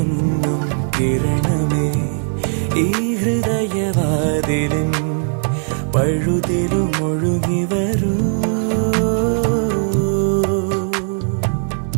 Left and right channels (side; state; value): left; silent; 58 dB below the other